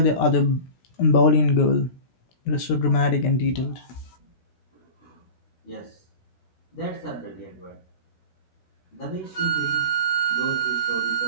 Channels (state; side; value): late; right; 17 ms